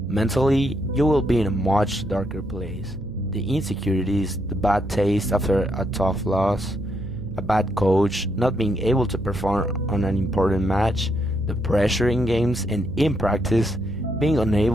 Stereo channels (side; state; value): right; noise; hum, 15 dB below the sound